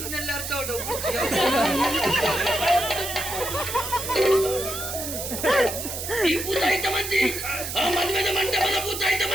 ಅರ್ಥ ಹೊಡು ಈ ಭೂತ ಐತ ಮಂತಿ ಆ ಮದುವೆದ ಮಂಟಪದ ಭೂತ ಐತ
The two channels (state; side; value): noise; right; hiss, 6 dB below the sound